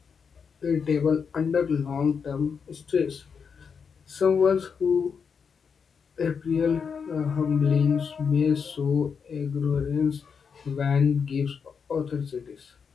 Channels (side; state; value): right; quieter; 6.2 dB